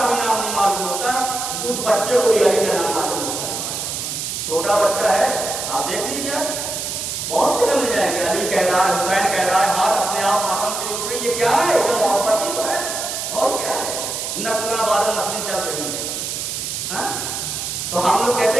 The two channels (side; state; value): right; noise; hiss, 4 dB below the sound